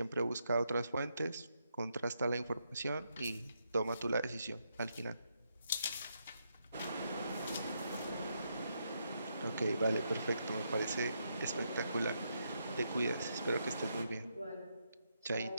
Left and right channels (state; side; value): inverted; both; correlation -0.80